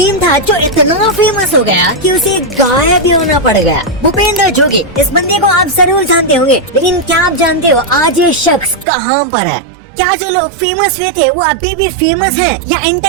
था जो इतना फेमस हो गया कि उसे गायब ही होना पड़ गया? भूपेंद्र जोगी, इस बंदे को आप जरूर जानते होंगे, लेकिन क्या आप जानते हो आज ये शख्स कहाँ पर है? क्या जो लोग फेमस हुए थे वो अभी भी फेमस हैं या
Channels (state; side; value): drops out; left; at 8.8 s